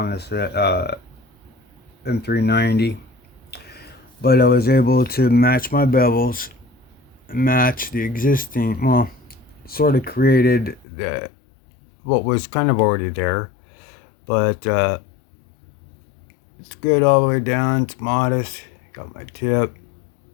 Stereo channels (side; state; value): right; drops out; at 10.9 s